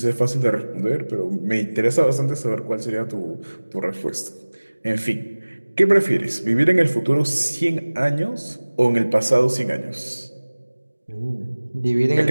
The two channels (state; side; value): inverted; both; correlation -1.00